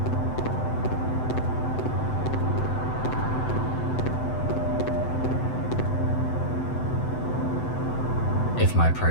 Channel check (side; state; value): right; late; 7.9 ms